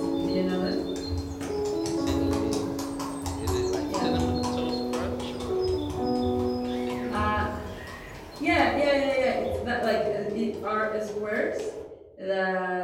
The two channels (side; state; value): both; identical; correlation 1.00